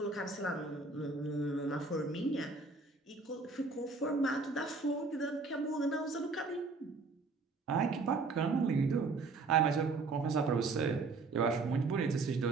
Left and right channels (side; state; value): left; quieter; 3.9 dB